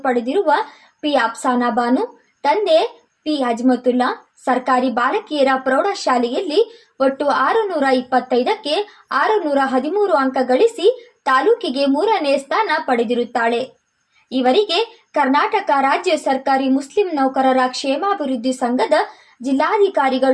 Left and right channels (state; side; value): identical; both; correlation 1.00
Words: ಪಡೆದಿರುವ ಪಿ ಅಫ್ಸಾನಾ ಬಾನು, ತಂದೆ ಪಿ ಅಜ್ಮತುಲ್ಲಾ ಸರ್ಕಾರಿ ಬಾಲಕಿಯರ ಪ್ರೌಢಶಾಲೆಯಲ್ಲಿ ಒಟ್ಟು 625ಕ್ಕೆ 613 ಅಂಕ ಗಳಿಸಿ ತಾಲೂಕಿಗೆ 3ನೇ ಸ್ಥಾನ ಪಡೆದಿರುತ್ತಾಳೆ. ಇವರಿಗೆ ಕರ್ನಾಟಕ ರಾಜ್ಯ ಸರ್ಕಾರಿ ಮುಸ್ಲಿಂ ನೌಕರರ ಕ್ಷೇಮಾಭಿವೃದ್ಧಿ ಸಂಘದ